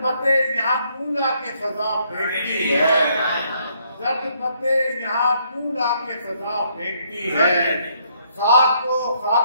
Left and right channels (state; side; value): inverted; both; correlation -0.70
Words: पत्ते यहाँ कूला के फजा फेंकती है, जर्द पत्ते यहाँ कूला के फजा फेंकती है। खाक को